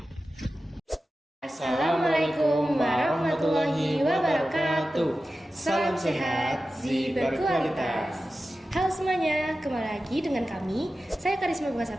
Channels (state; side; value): normal; both; correlation 0.94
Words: Assalamualaikum warahmatullahi wabarakatuh. Salam sehat, gizi berkualitas. Halo semuanya, kembali lagi dengan kami. Saya Karisma Bunga